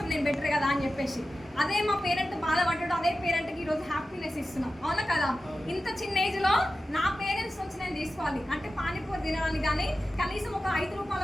నేను బెటర్ కదా అని చెప్పేసి. అదే మా పేరెంట్ బాధపడ్డాడు, అదే పేరెంట్కి ఈరోజు హ్యాపీనెస్ ఇస్తున్నాం, అవునా కదా? ఇంత చిన్న ఏజ్లో నా పేరెంట్స్ నుంచి నేను తీసుకోవాలి అంటే పానీపూరి తినడానికి కానీ, కనీసం ఒక 5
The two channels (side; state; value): both; normal; correlation 0.94